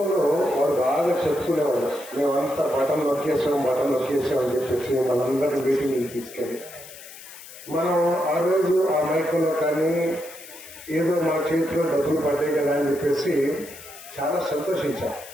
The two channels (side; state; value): left; noise; hiss, 17 dB below the sound